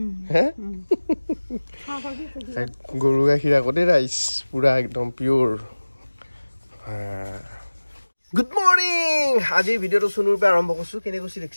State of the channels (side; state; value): both; inverted; correlation -1.00